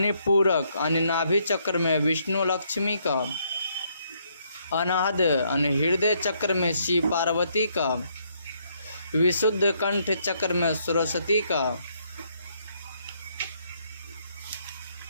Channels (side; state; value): both; inverted; correlation -0.72